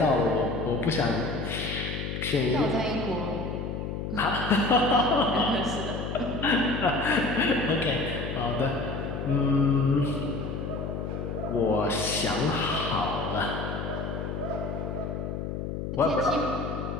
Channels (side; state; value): left; noise; hum, 4 dB below the sound